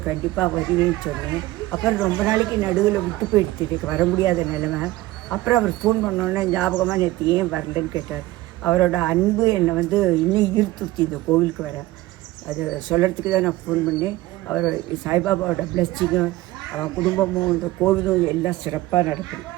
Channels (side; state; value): left; quieter; 17.8 dB